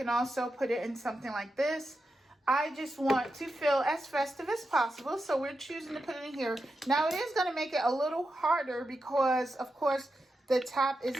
also put it in something like this. I just want to feel as festive as possible, so we're choosing to put it in here. Now, it is going to make it a little harder because, of course, the top is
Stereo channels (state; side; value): normal; both; correlation 0.88